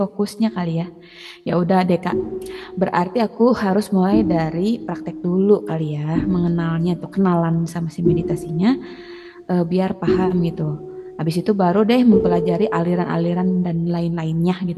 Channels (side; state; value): both; identical; correlation 1.00